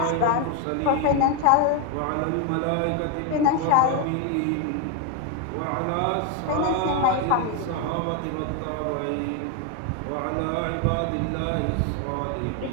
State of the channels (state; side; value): different; both; correlation 0.01